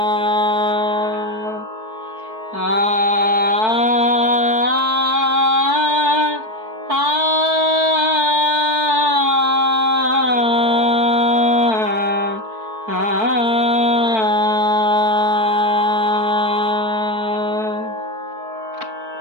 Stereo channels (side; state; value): left; late; 4.5 ms